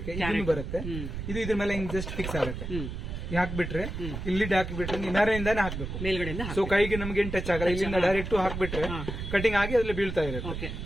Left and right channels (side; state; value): right; noise; rumble, 6 dB below the sound